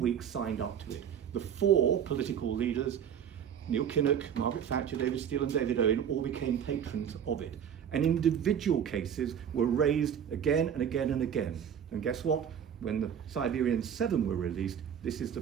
signed up to it. The 4 political leaders, Neil Kinnock, Margaret Thatcher, David Steele and David Owen all became patrons of it. And individual cases were raised again and again and again. And guess what? When the Siberian 7 were released, this is the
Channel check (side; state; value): left; quieter; 8.5 dB